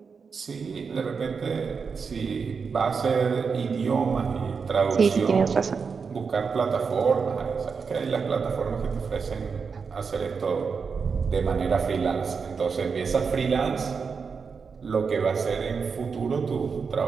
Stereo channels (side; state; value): left; quieter; 5.5 dB